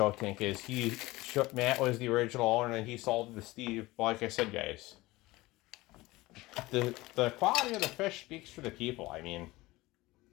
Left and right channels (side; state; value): right; quieter; 19.9 dB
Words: Tank. Matt was the original owner and he sold it to Steve. But like I said, guys, the quality of the fish speaks for the people. I mean,